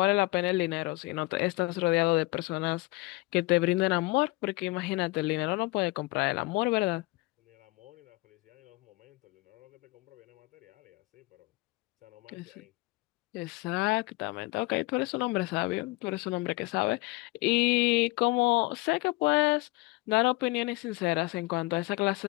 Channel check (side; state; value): right; quieter; 22.6 dB